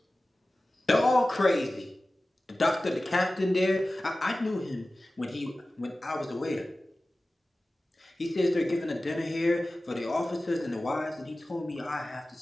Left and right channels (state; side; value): normal; both; correlation 0.96